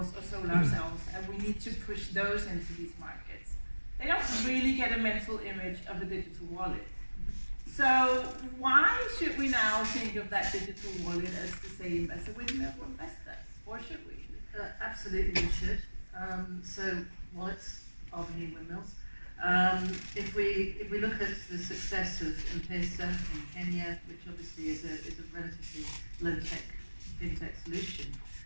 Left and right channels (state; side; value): inverted; both; correlation -1.00